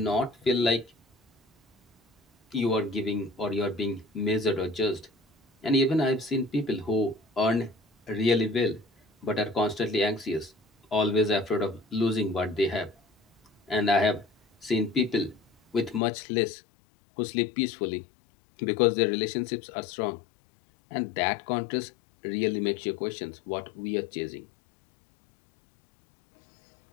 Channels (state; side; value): drops out; right; at 16.0 s